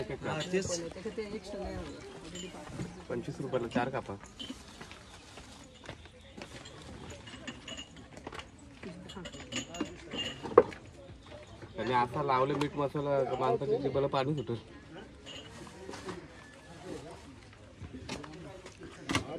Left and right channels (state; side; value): identical; both; correlation 1.00